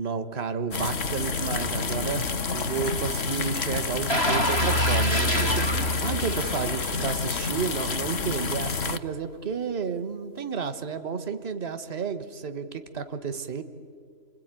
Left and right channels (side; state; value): right; late; 3.0 ms